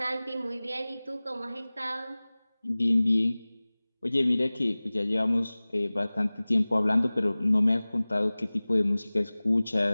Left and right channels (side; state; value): both; inverted; correlation -0.99